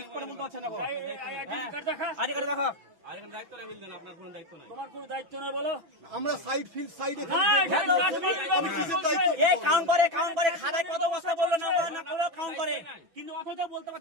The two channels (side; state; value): left; late; 6.0 ms